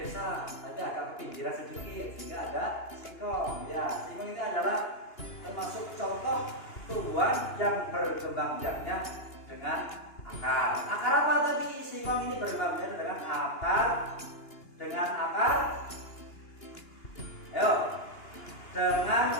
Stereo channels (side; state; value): right; late; 2.9 ms